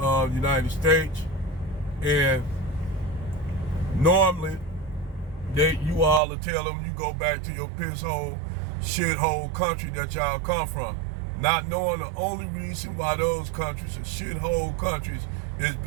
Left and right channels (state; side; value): drops out; left; at 6.2 s